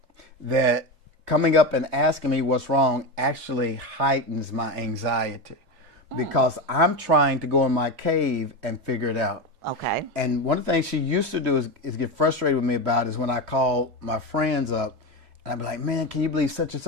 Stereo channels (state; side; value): normal; both; correlation 0.18